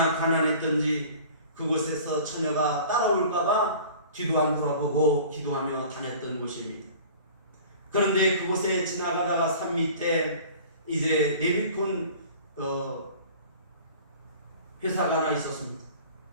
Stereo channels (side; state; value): both; inverted; correlation -0.44